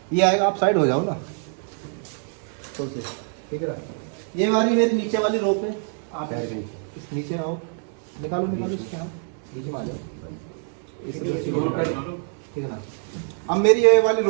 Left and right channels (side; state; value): left; silent; 56 dB below the other